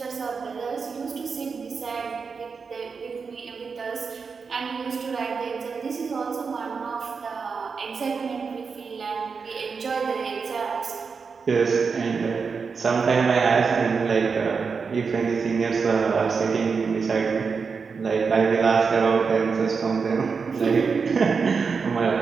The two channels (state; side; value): quieter; left; 5.3 dB